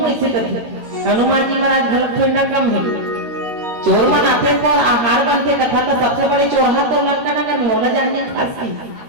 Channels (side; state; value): left; late; 13 ms